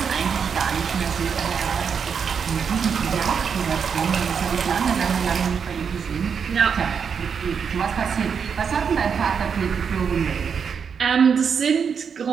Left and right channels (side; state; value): left; quieter; 6.6 dB